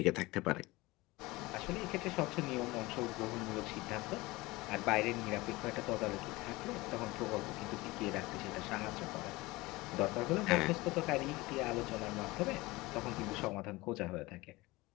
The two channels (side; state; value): right; quieter; 21.1 dB